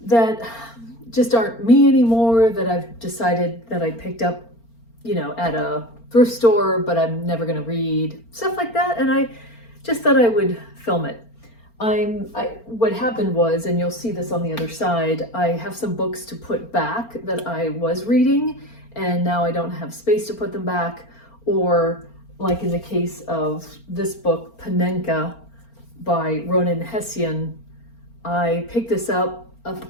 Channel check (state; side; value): late; right; 4.4 ms